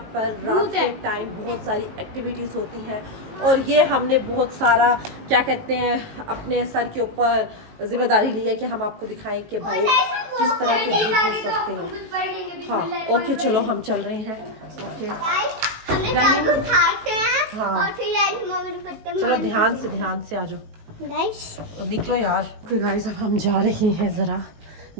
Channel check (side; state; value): left; late; 19 ms